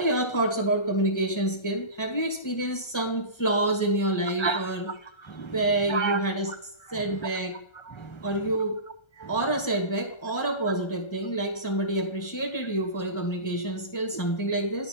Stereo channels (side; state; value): right; late; 1.3 ms